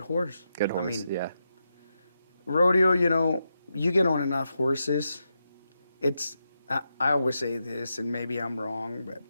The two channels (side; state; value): both; inverted; correlation -0.86